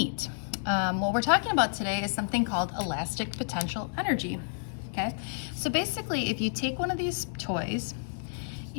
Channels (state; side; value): silent; right; 58 dB below the other